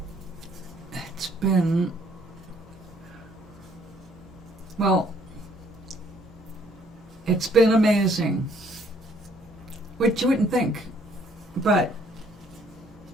amazing, which you wouldn't think, but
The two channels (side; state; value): both; normal; correlation 0.64